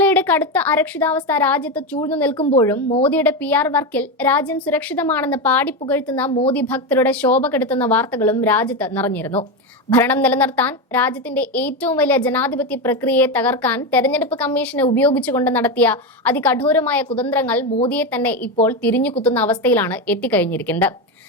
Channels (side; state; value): both; normal; correlation 0.13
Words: കടുത്ത അരക്ഷിതാവസ്ഥ രാജ്യത്ത് ചൂഴ്ന്നു നിൽക്കുമ്പോഴും മോദിയുടെ PR വർക്കിൽ രാജ്യം സുരക്ഷിതമാണെന്ന് പാടിപ്പുകഴ്ത്തുന്ന മോദി ഭക്തരുടെ ശോഭ കെടുത്തുന്ന വാർത്തകളും രാജ്യത്ത് നിറഞ്ഞിരുന്നു. ഭരണം നിലനിർത്താൻ രാജ്യത്തിന്റെ ഏറ്റവും വലിയ ജനാധിപത്യ പ്രക്രിയയെ തകർക്കാൻ തെരഞ്ഞെടുപ്പ് കമ്മീഷനെ ഉപയോഗിച്ചുകൊണ്ട് നടത്തിയ അതികഠോരമായ കുതന്ത്രങ്ങൾ മോദിയെ തന്നെ ഇപ്പോൾ തിരിഞ്ഞുകുത്തുന്ന അവസ്ഥയിലാണ് എത്തിക്കഴിഞ്ഞിരിക്കുന്നത്.